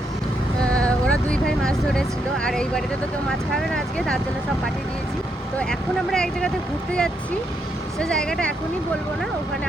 ওরা দুই ভাই মাছ ধরেছিল, আর এই বাড়িতে তো কেউ মাছ খাবে না আজকে, তার জন্য সব পাঠিয়ে দিয়েছি। তো এখন আমরা এক জায়গাতে ঘুরতে যাচ্ছি, সে জায়গাটা এখনই বলবো না, ওখানে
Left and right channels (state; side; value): normal; both; correlation 0.78